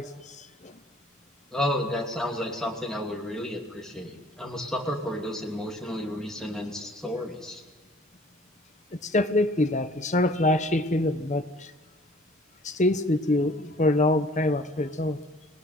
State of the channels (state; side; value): normal; both; correlation 0.53